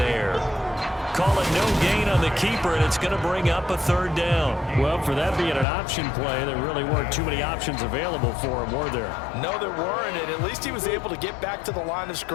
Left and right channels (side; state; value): right; drops out; at 5.7 s